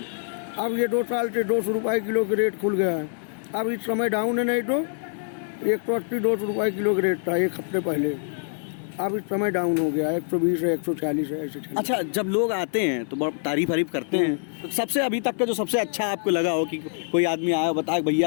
अब ये 2 साल से 200 रुपए किलो के रेट खुल गया है। अब इस समय डाउन है, नहीं तो 180-200 रुपए किलो का रेट था एक हफ्ते पहले। अब इस समय डाउन हो गया, 120 है 140 है ऐसे। अच्छा, जब लोग आते हैं तो बहुत तारीफ करते हैं, तो सबसे अभी तक का जो सबसे अच्छा आपको लगा हो कि कोई आदमी आया बताया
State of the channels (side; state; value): right; silent; 62 dB below the other